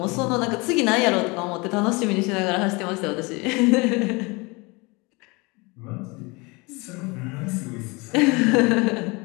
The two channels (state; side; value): quieter; right; 26.5 dB